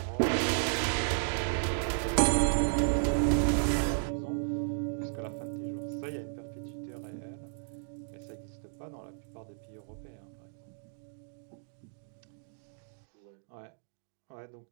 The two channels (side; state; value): left; silent; digital silence